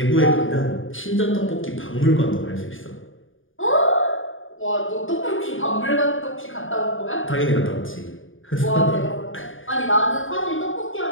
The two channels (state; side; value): late; right; 0.58 ms